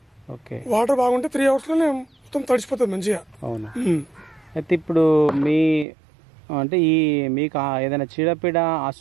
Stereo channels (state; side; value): drops out; left; at 5.9 s